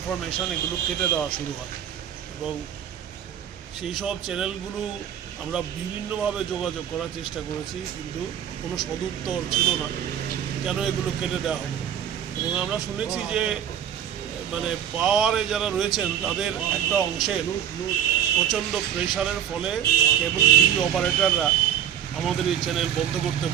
এগুলো কেটে দেওয়া শুরু হয় এবং সেই সব চ্যানেলগুলো আমরা বিভিন্নভাবে যোগাযোগ করার চেষ্টা করেছি, কিন্তু কোনো সদুত্তর ছিল না কেন এগুলো কেটে দেওয়া হবে। এবং আমরা শুনেছি যে মানে পাওয়ারে যারা রয়েছেন তাদের একটা অংশের প্রচণ্ড প্রেশারের ফলে কেবল টিভি অপারেটররা আমাদের এই চ্যানেল বন্ধ করতে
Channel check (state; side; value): quieter; left; 9.7 dB